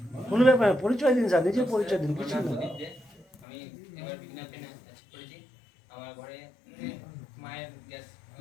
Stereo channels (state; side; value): drops out; right; at 3.2 s